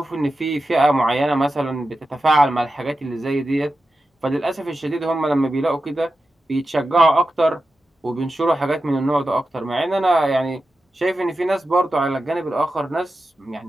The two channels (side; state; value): both; normal; correlation 0.92